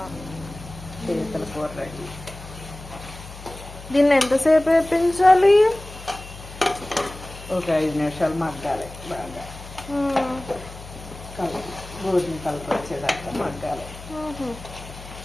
పీతల కూర రెడీ. దీన్ని ఎంతసేపు వేపించాలి? ఒక 5 నిమిషాలు మగ్గాలి. బాగా గోధుమ కలప వచ్చేదాకా మగ్గాలి.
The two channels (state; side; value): noise; left; hum, 15 dB below the sound